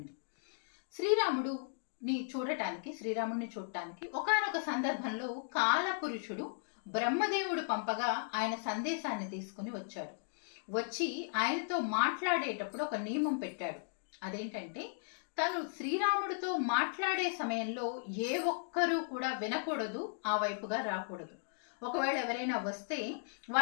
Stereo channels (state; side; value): silent; right; digital silence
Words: శ్రీరాముడిని చూడటానికి ఒకానొక సందర్భంలో కాలపురుషుడు బ్రహ్మదేవుడు పంపగా ఆయన సందేశాన్ని తీసుకుని వచ్చాడు. వచ్చి ఆయనతో మాట్లాడేటప్పుడు ఒక నియమం పెట్టాడు. అదేంటంటే, తను శ్రీరాముడితో మాట్లాడే సమయంలో ఏ ఒక్కరూ కూడా వినకూడదు, ఆ వైపుగా రాకూడదు. ఒకవేళ ఎవరైనా వస్తే